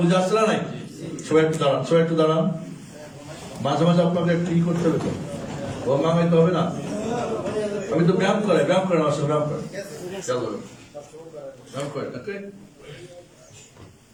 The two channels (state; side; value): identical; both; correlation 1.00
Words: বুঝে আসছে না? নাই? সবাই একটু দাঁড়ান, সবাই একটু দাঁড়ান। মাঝে মাঝে আপনাকে একটু ই করতে হবে তো, গঙ্গামাইতে হবে না। আমি তো ব্যায়াম করে আমার সঙ্গে ব্যায়াম করে। চলো ব্যায়াম করে। ওকে,